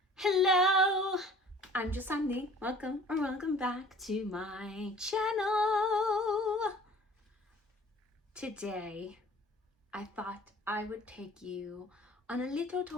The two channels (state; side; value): normal; both; correlation 0.49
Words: Hello, I'm just Sandy. Welcome back to my channel. Today, I thought I would take you on a little